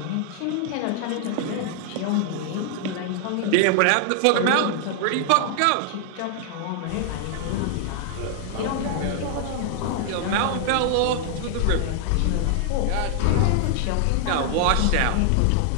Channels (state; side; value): different; both; correlation 0.00